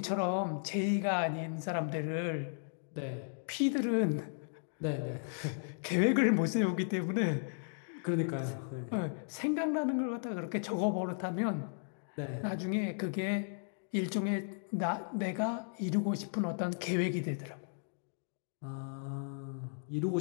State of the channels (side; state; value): right; silent; digital silence